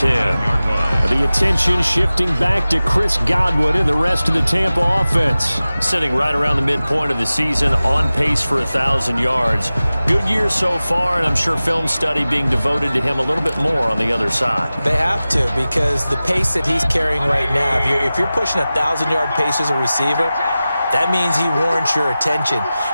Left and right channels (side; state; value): both; inverted; correlation -0.96